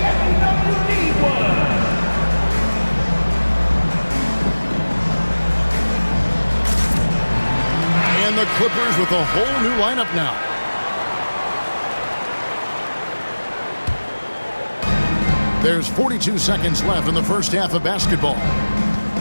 And the Clippers with a whole new lineup now. There's 42 seconds left in the first half of basketball.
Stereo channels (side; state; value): both; inverted; correlation -1.00